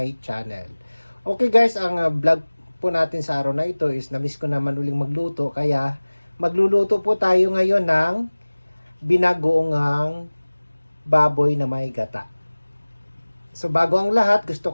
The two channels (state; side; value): inverted; both; correlation -1.00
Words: channel. Okay guys, ang vlog po natin sa araw na ito is na-miss ko naman uling magluto, kaya magluluto po tayo ngayon ng binagoongang baboy na may gata. So bago ang lahat, gusto